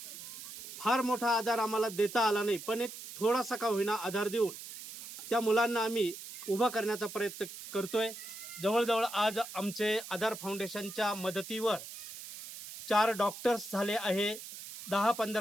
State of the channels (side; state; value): right; noise; hiss, 12 dB below the sound